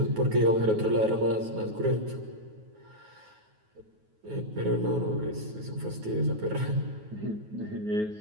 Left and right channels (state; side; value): late; left; 9.4 ms